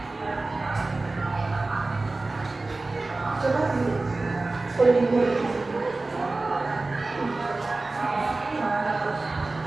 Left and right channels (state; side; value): quieter; left; 3.3 dB